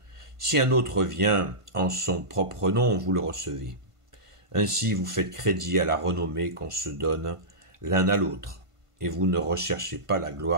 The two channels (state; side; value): late; left; 1.5 ms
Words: Si un autre vient en son propre nom, vous le recevez. Ainsi vous faites crédit à la renommée qu'on se donne l'un à l'autre, et vous ne recherchez pas la